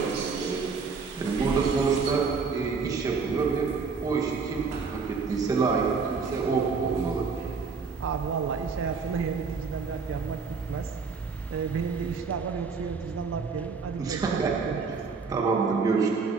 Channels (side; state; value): left; quieter; 4.9 dB